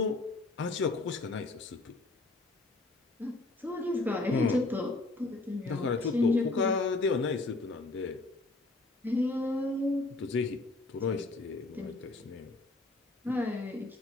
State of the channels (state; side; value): quieter; right; 3.1 dB